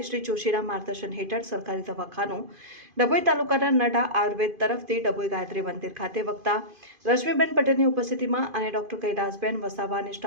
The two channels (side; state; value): left; late; 2.5 ms